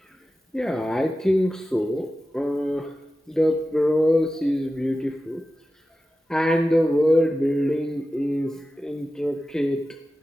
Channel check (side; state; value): both; normal; correlation 0.94